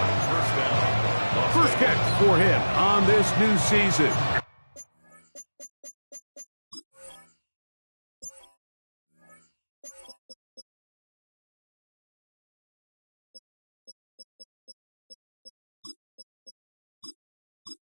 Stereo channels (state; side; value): inverted; both; correlation -1.00